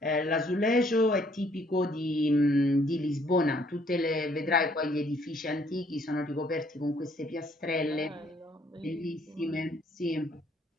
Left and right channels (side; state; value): both; normal; correlation 0.65